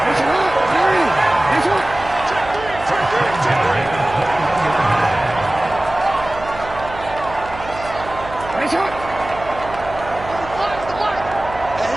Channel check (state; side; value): noise; right; hum, 14 dB below the sound